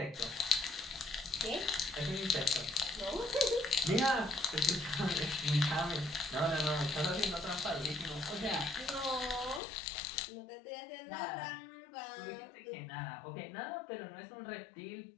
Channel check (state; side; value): drops out; right; at 9.6 s